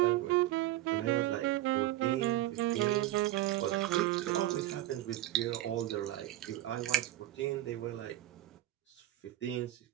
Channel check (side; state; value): left; quieter; 14.9 dB